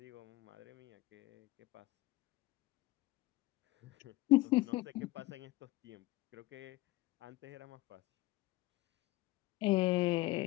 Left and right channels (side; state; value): right; quieter; 19.0 dB